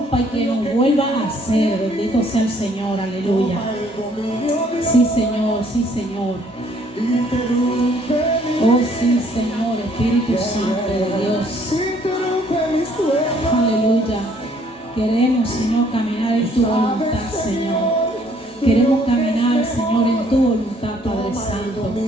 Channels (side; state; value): both; normal; correlation 0.63